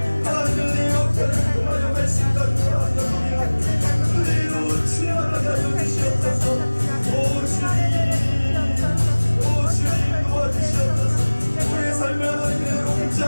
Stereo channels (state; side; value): inverted; both; correlation -1.00